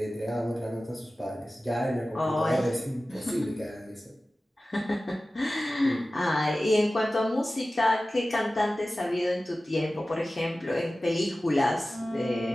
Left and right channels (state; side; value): normal; both; correlation 0.96